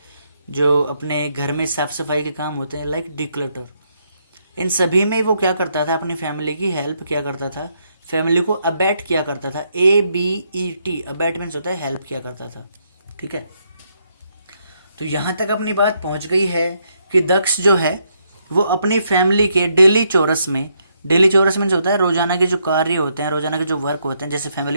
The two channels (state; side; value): inverted; both; correlation -0.76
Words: जो अपने घर में साफ सफाई के काम होते हैं, लाइक डिक्लटर, इन सभी में वो क्या करता था, अपनी फैमिली की हेल्प किया करता था, फैमिली को अबैट किया करता था। ABET, अबैट मीन्स होता है हेल्प किया करता था, ठीक है। तो यहाँ तक अपनी बात पहुँच गई है कि दक्ष जो है वो अपनी फैमिली के डेली चौरस में, डेली चौरस मीन्स होता है रोजाना के जो कार्य होते हैं, रोजाना के जो वर्क होते हैं, जैसे फैमिली